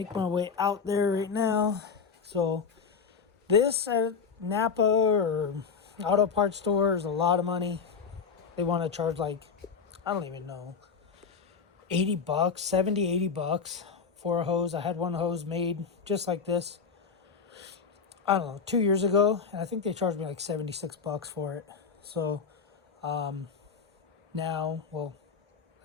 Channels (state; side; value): quieter; right; 5.8 dB